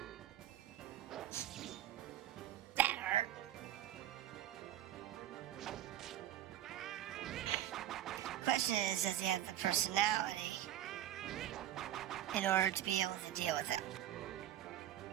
That hurt. Question is, does he have the personality in order to be able to deal with it?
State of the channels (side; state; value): left; quieter; 12.4 dB